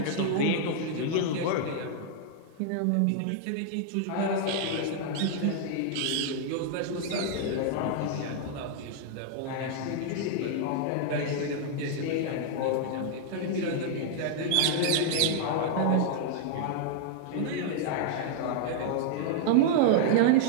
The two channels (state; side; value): different; both; correlation 0.00